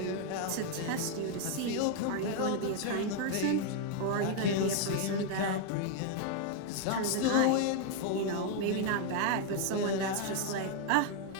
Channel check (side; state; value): both; different; correlation 0.01